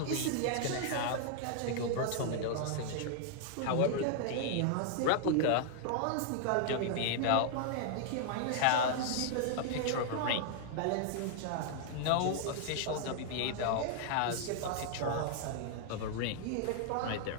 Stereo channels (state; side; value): different; both; correlation 0.00